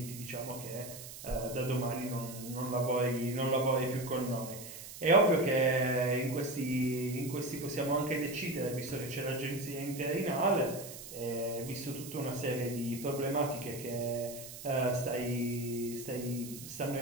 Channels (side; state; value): right; noise; hiss, 12 dB below the sound